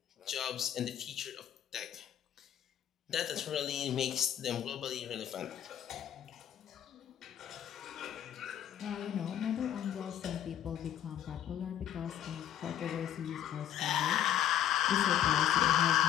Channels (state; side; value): quieter; right; 10.8 dB